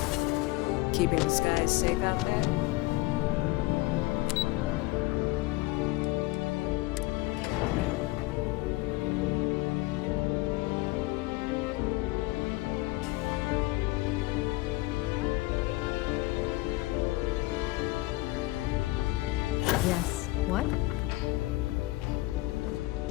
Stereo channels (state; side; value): quieter; right; 20.5 dB